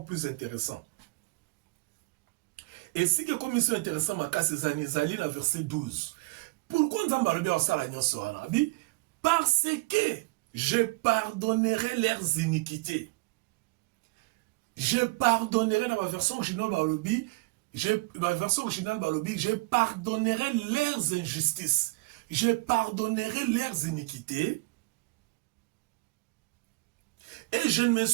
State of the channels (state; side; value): quieter; left; 24.9 dB